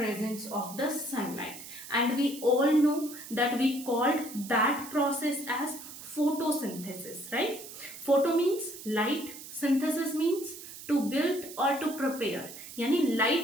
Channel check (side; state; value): right; noise; hiss, 13 dB below the sound